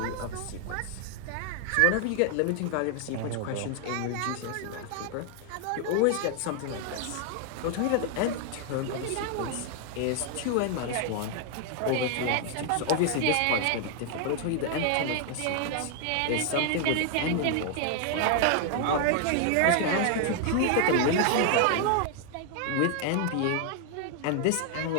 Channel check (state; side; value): different; both; correlation 0.00